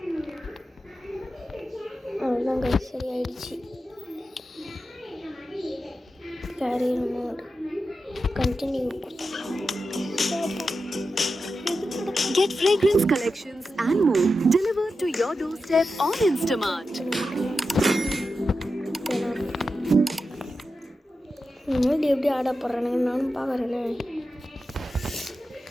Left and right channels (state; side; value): normal; both; correlation 0.90